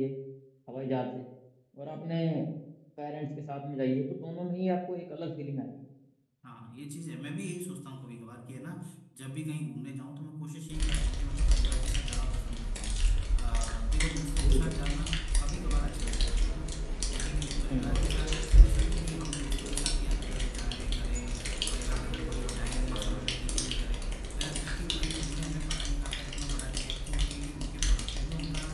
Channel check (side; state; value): both; identical; correlation 1.00